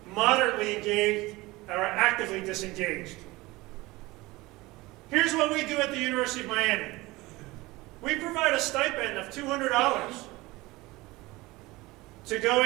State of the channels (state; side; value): quieter; left; 20.9 dB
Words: moderately engaged, or actively disengaged. Here's what we do at the University of Miami. We provide a stipend of $200 to go